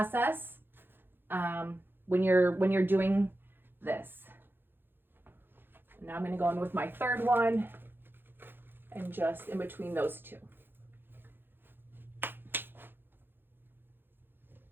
when you're doing this. Now I'm gonna go in with my 3rd one, and just in between those 2.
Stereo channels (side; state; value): left; late; 0.10 ms